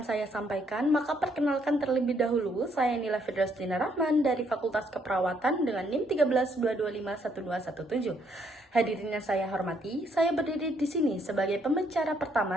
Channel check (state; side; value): normal; both; correlation 0.71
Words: saya sampaikan, maka perkenalkan terlebih dahulu, saya Nila Fidrastina Rahman dari Fakultas Keperawatan dengan NIM 13225117. Hadirin yang saya hormati, saya berdiri di sini sebagai pembicara